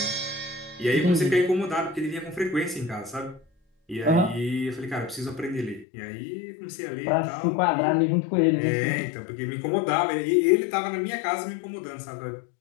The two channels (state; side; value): drops out; right; at 5.9 s